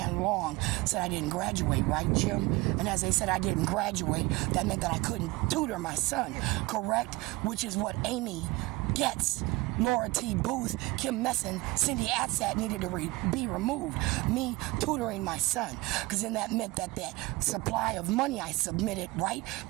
Long said I didn't graduate, right, Jim? And as they said I didn't graduate, that meant that I couldn't tutor my son, correct? Which is what Amy Getz, Laura T. Booth, Kim Messin, Cindy Atsat needed to be removed. Me tutoring my son. Because then that meant that that supply of money I submitted, right,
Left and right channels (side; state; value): left; quieter; 22.1 dB